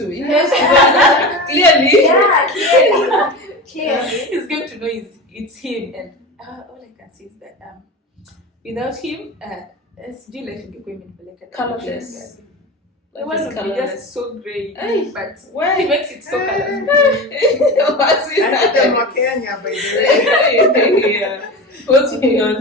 Clearly. Yeah, clearly. He's going to know it's him, and all I can say is that without him, SG life ingekuwa imenipeleka colorless. It would be just so great, but he makes it so colorful. What's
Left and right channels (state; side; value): normal; both; correlation 0.27